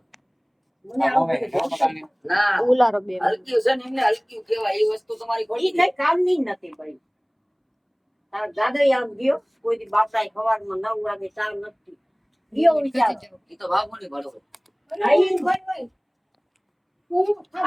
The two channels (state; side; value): identical; both; correlation 1.00